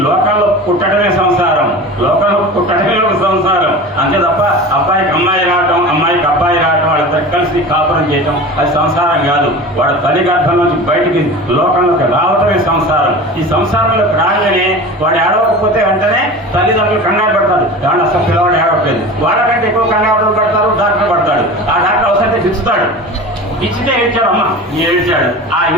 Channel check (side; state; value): both; normal; correlation 0.34